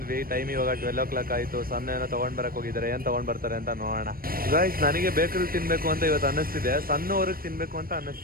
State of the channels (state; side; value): late; left; 0.43 ms